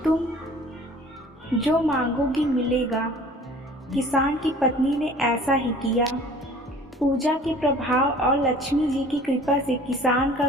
तुम जो मांगोगी मिलेगा। किसान की पत्नी ने ऐसा ही किया। पूजा के प्रभाव और लक्ष्मी जी की कृपा से किसान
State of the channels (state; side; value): normal; both; correlation 0.49